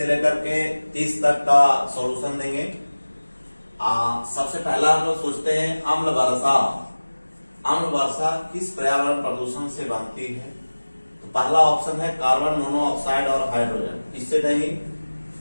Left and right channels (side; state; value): both; inverted; correlation -1.00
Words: लेकर के 30 तक का सॉल्यूशन देंगे। सबसे पहला हम लोग सोचते हैं अम्ल वर्षा। अम्ल वर्षा किस पर्यावरण प्रदूषण से बनती है? तो पहला ऑप्शन है कार्बन मोनोऑक्साइड और हाइड्रोजन। इससे नहीं,